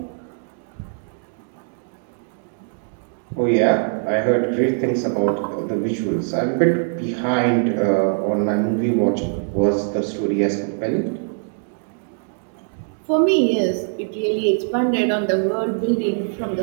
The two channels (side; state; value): left; silent; digital silence